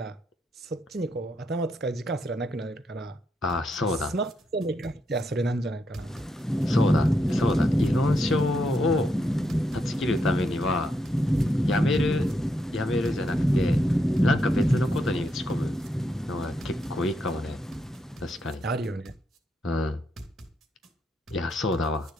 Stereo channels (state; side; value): normal; both; correlation 0.80